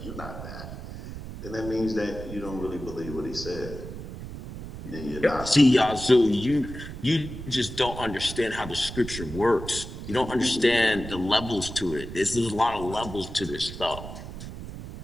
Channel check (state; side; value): noise; right; rumble, 10 dB below the sound